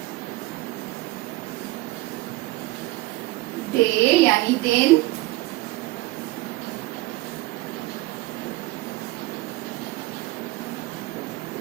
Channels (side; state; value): left; quieter; 19.8 dB